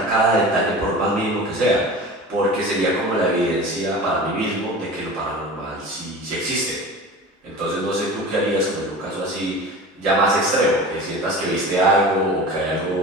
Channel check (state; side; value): normal; both; correlation 0.35